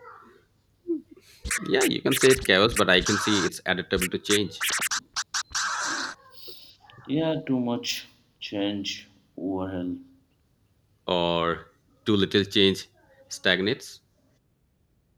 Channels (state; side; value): identical; both; correlation 1.00